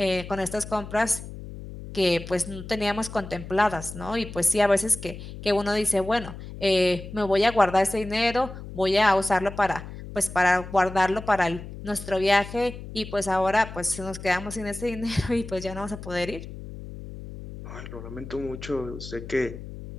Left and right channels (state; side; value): noise; left; hum, 12 dB below the sound